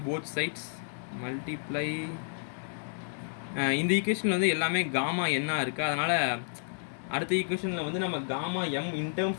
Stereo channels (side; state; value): right; silent; 55 dB below the other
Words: போத் சைட்ஸ். மல்டிப்ளை இந்த ஈக்குவேஷனில் வந்து எல்லாமே காமா என்ன இருக்குது, அதனால் அடுத்த ஈக்குவேஷனில் வந்து நம்ம gamma m in